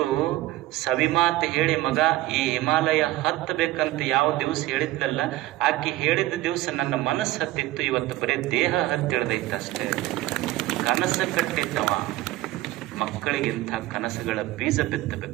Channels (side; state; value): left; quieter; 16.8 dB